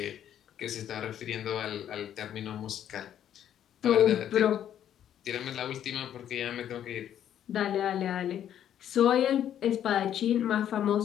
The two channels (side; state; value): right; quieter; 10.3 dB